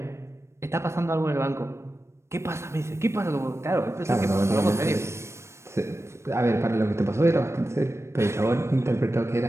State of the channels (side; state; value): left; late; 0.13 ms